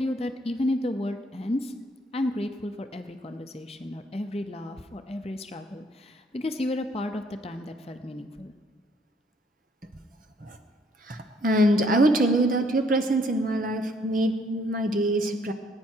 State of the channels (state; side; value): normal; both; correlation 0.66